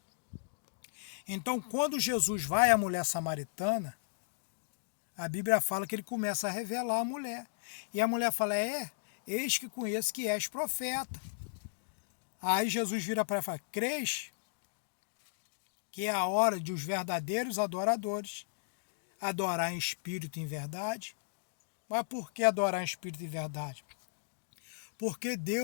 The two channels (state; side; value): silent; right; digital silence